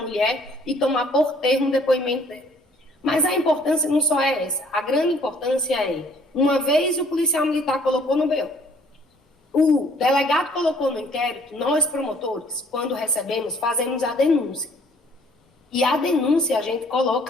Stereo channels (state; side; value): normal; both; correlation 0.59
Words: e tomar por termo o depoimento dela. Mas a importância não só é essa. A grande importância é, uma vez o policial militar colocou no BO, o delegado colocou no inquérito, nós promotores, quando recebemos, fazemos a denúncia. E a denúncia a gente